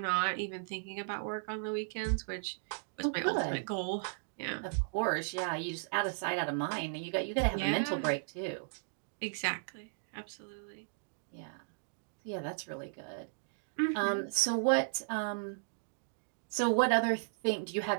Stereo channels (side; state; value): left; silent; digital silence